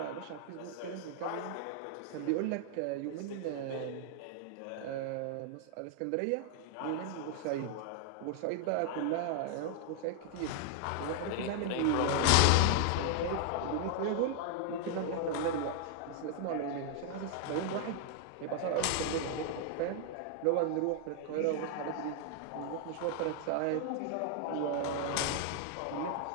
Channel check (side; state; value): both; different; correlation 0.00